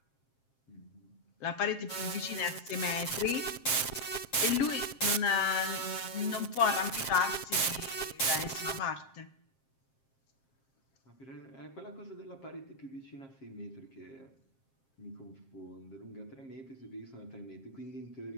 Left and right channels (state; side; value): late; right; 7.5 ms